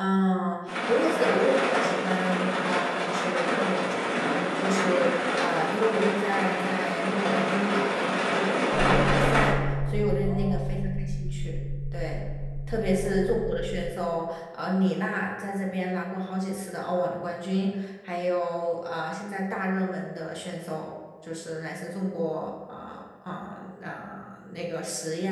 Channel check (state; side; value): identical; both; correlation 1.00